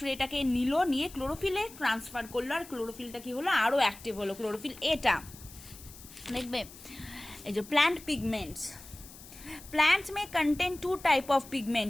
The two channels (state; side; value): noise; left; hiss, 18 dB below the sound